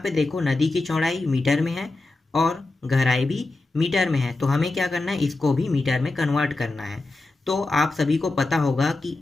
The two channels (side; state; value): right; quieter; 3.2 dB